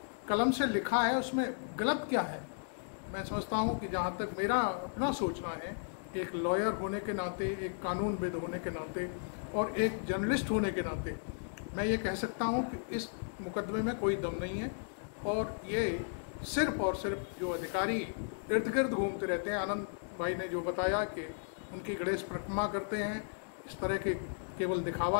कलम से लिखा है। उसमें गलत क्या है? मैं समझता हूँ कि जहाँ तक मेरा अपना सोचना है, एक लॉयर होने के नाते, एक कानूनविद होने के नाते और एक जर्नलिस्ट होने के नाते मैं ये कह सकता हूँ कि इस मुकदमे में कोई दम नहीं है। और ये सिर्फ और सिर्फ जो अधिकारी इर्द गिर्द घूमते रहते हैं, आनंद भाई ने जो बताया कि उनकी गणेश परिक्रमा करते हैं, इस तरह के केवल दिखावा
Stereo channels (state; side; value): silent; right; digital silence